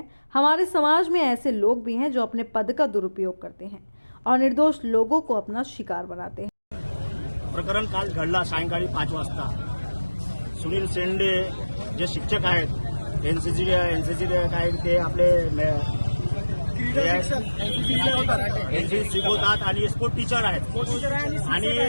हमारे समाज में ऐसे लोग भी हैं जो अपने पद का दुरुपयोग करते हैं और निर्दोष लोगों को अपना शिकार बनाते हैं। प्रकरण काल घडला सायंकाळी 5 वाजता। सुनील शेंडे जे शिक्षक आहेत एनसीसी काय ते आपले एनसीसी शिकवतात आणि स्पोर्ट टीचर आहेत आणि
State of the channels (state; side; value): inverted; both; correlation -1.00